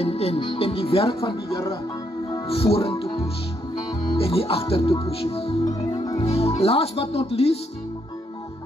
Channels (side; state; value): both; normal; correlation 0.75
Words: die werk van die Here vorentoe push, en nie agtertoe push. Last but not least,